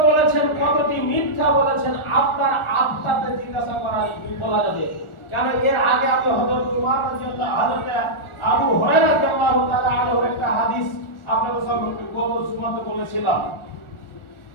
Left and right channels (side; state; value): right; late; 1.4 ms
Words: বলেছেন, কতটি মিথ্যা বলেছেন, আপনার আত্মাতে জিজ্ঞাসা করা বলা যাবে। কেন এর আগে আমি হযরত উমর রাদিয়াল্লাহু হযরত আবু হুরায়রা রাদিয়াল্লাহু তাআলা আনহু একটা হাদিস আপনাদের সামনে বলেছিলাম।